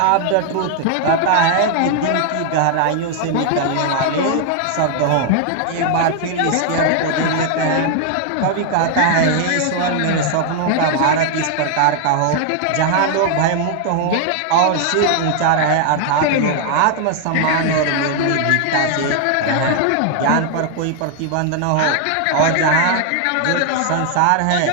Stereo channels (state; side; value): different; both; correlation 0.00